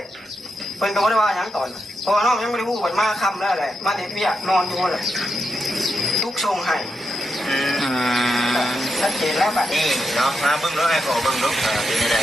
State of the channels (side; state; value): both; normal; correlation 0.85